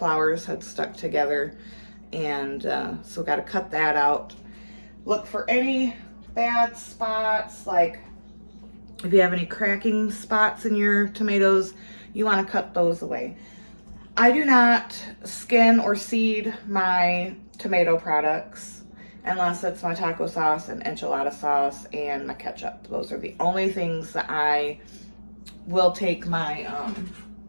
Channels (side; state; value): both; inverted; correlation -1.00